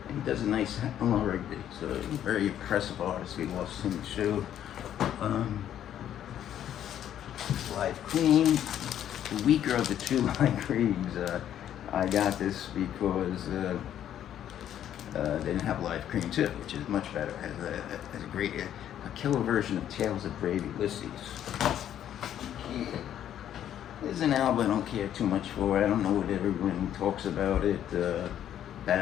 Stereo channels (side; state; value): right; quieter; 10.6 dB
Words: and he does a nice Eleanor Rigby. So a very impressive artist. We lost him too. Live Cream, the weaker of the two Live Creams. I got this because they didn't have Live Cream too, which is much better. Has a great a killer version of Tales of Brave Ulysses. Yeah. This is an album I don't care too much for. I don't know what everyone talks about it. Bat